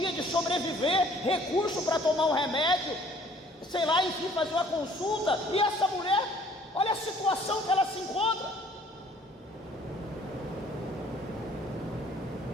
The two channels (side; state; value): both; normal; correlation 0.57